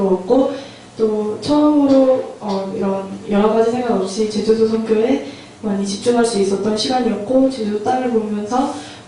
또 처음으로 이런 여러 가지 생각 없이 제주도 선교에 많이 집중할 수 있었던 시간이었고 제주도 땅을 보면서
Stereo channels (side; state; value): both; identical; correlation 1.00